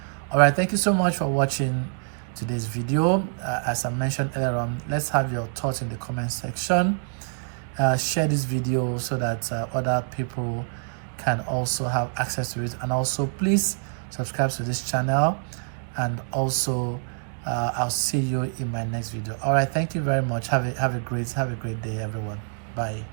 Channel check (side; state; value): left; silent; 58 dB below the other